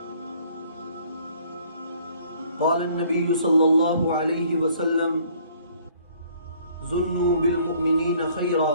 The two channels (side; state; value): both; inverted; correlation -0.59